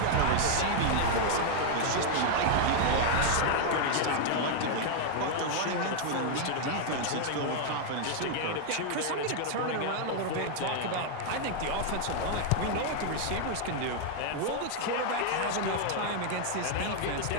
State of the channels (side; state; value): both; different; correlation 0.00